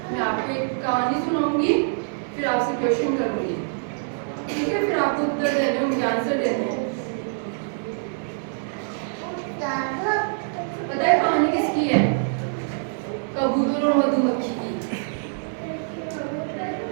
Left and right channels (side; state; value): left; silent; 62 dB below the other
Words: मैं आपको एक कहानी सुनाऊंगी, फिर आपसे क्वेश्चन करूंगी, ठीक है? फिर आपको उत्तर देने होंगे, आंसर देने हैं। पता है कहानी किसकी है? कबूतर और मधुमक्खी की।